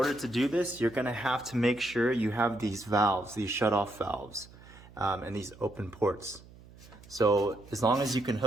to do this, you're gonna have to make sure you have these valves, these shut-off valves, and these open ports. So as long as you can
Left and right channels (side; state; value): right; noise; hum, 21 dB below the sound